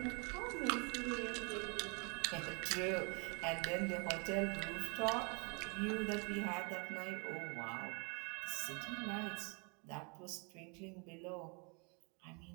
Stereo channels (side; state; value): left; quieter; 33.5 dB